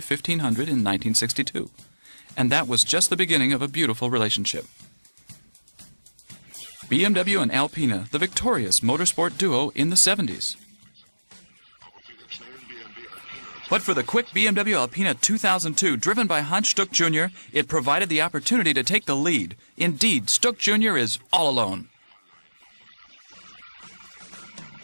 in 1962. And that was just the beginning of a beautiful relationship. BMW and Alpina, the victorious motorsport duo in the 70s. But for the quick BMW Alpina 2002, driven by Hans Stuck Jr., it provided the opportunity to take the lead. Indeed, Stuck Jr. is all alone.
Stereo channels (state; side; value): inverted; both; correlation -1.00